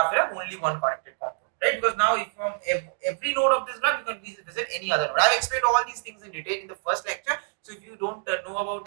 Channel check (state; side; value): silent; left; digital silence